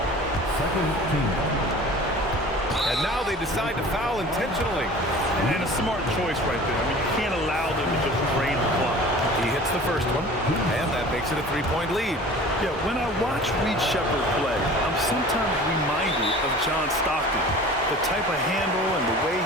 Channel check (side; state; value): both; normal; correlation 0.43